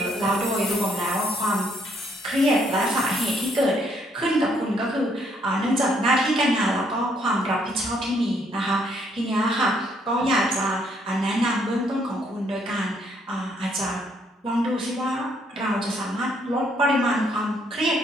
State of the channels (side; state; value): both; normal; correlation 0.69